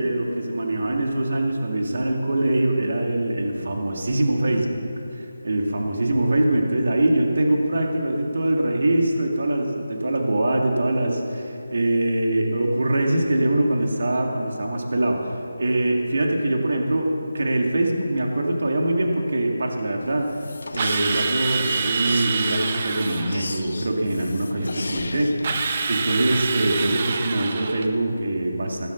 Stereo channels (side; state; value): both; inverted; correlation -0.93